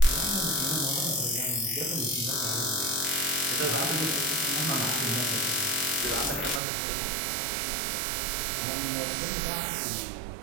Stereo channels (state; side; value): drops out; left; at 6.6 s